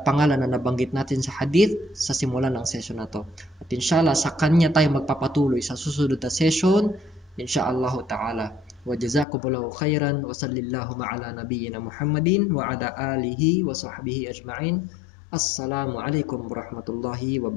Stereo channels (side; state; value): right; drops out; at 9.2 s